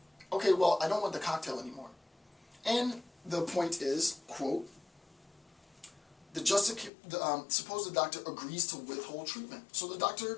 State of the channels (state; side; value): drops out; right; at 6.9 s